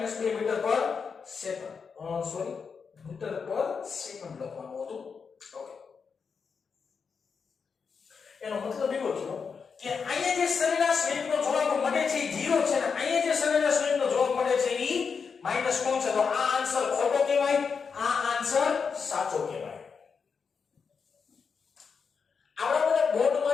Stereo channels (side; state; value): right; quieter; 5.7 dB